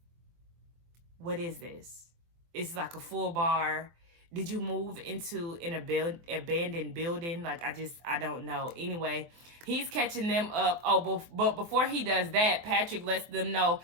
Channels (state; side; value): late; left; 24 ms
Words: What is this? It's like a full bar. Did you move into an abandoned building? Like, I don't know. Anyway, he's catching them up. Oh, but before he does that, Patrick lets them know